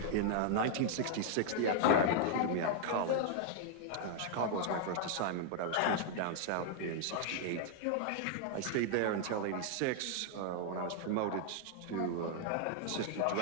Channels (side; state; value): both; different; correlation 0.00